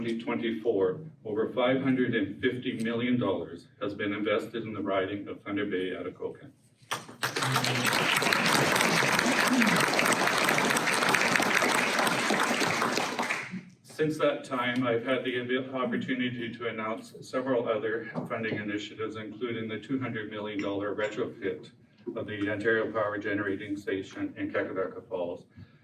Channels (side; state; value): both; identical; correlation 1.00